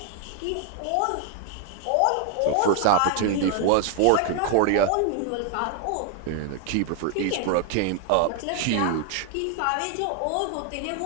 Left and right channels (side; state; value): both; different; correlation 0.00